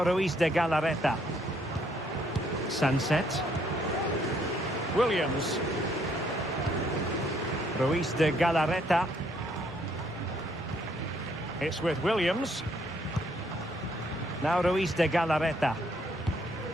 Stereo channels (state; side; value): normal; both; correlation 0.69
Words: Ruiz de Galarreta. Sunset. Williams. Ruiz de Galarreta. It's with Williams. Now Ruiz de Galarreta.